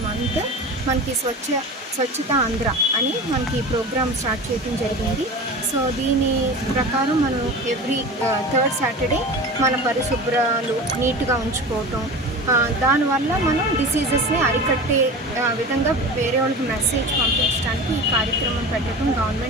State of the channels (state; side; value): normal; both; correlation 0.32